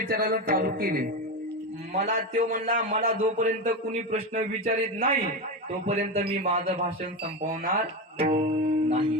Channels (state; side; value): normal; both; correlation 0.17